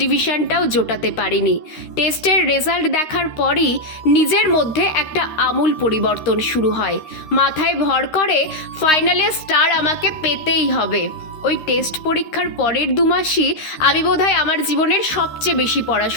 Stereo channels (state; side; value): late; right; 13 ms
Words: ডিভিশনটাও জোটাতে পারিনি। টেস্টের রেজাল্ট দেখার পরই নিজের মধ্যে একটা আমূল পরিবর্তন শুরু হয়। মাথায় ভর করে ফাইনালে স্টার আমাকে পেতেই হবে। ওই টেস্ট পরীক্ষার পরের 2 মাসই আমি বোধহয় আমার জীবনের সবচেয়ে বেশি